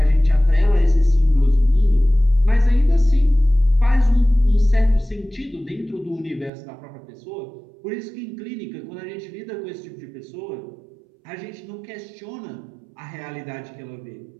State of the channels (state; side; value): drops out; left; at 6.5 s